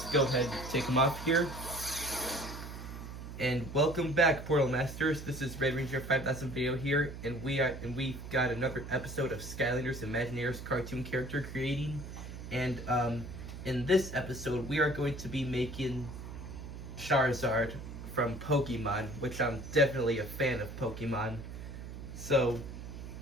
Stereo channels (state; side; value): noise; right; hum, 10 dB below the sound